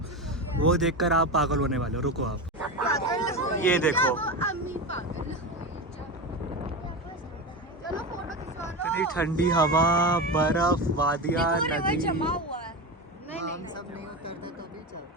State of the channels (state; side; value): normal; both; correlation 0.21